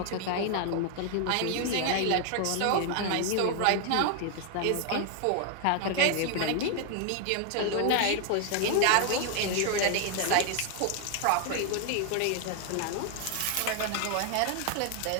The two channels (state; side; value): different; both; correlation 0.00